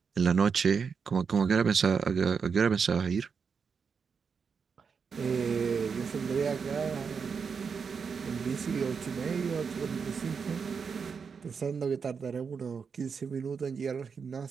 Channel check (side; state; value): left; quieter; 5.9 dB